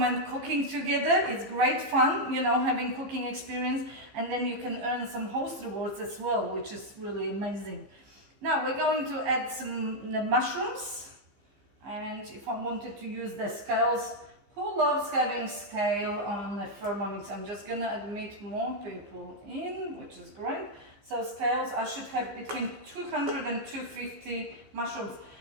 cooking together. It's great fun, you know, having cooking experience, and then you can earn some host rewards as well, which is really amazing. Now we're going to add some mushrooms, and if I wanted to use the scales, who loves having scale on a Thermomix? I'm just gonna admit more people in, which is great. So scales, I should have between 200 and 250 mushrooms.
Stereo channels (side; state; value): left; late; 15 ms